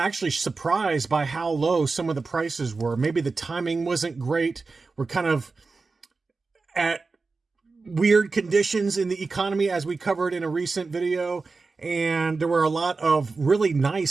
surprised by how low some of the prices were. Maybe the timing wasn't great. We're kind of at weird conditions in the economy, as we covered in a recent video. And there were a lot of really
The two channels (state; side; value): quieter; left; 4.1 dB